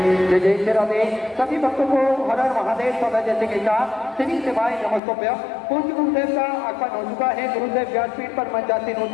जय जय श्री राधे। सभी भक्तों को हर हर महादेव सदा जैसे के साथ श्री शिवाय नमस्तोभ्य। पूज्य गुरुदेव का आगमन हो चुका है, गुरुदेव व्यासपीठ पर मंचासीन हो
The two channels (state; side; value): drops out; right; at 5.0 s